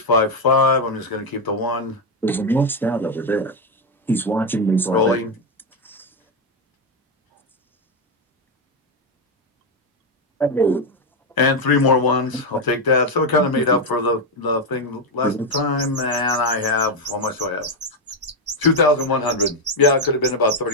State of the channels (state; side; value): normal; both; correlation 0.05